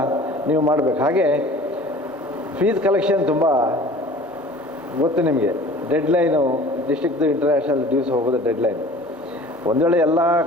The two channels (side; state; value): both; normal; correlation 0.45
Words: ನೀವು ಮಾಡಬೇಕು. ಹಾಗೆ ಫೀಸ್ ಕಲೆಕ್ಷನ್ ತುಂಬ ಗೊತ್ತು ನಿಮಗೆ. ಡೆಡ್ಲೈನು ಡಿಸ್ಟ್ರಿಕ್ದು ಇಂಟರ್ನ್ಯಾಷನಲ್ ಡ್ಯೂಸ್ ಹೋಗೋದು ಡೆಡ್ಲೈನ್. ಒಂದು ವೇಳೆ ಎಲ್ಲ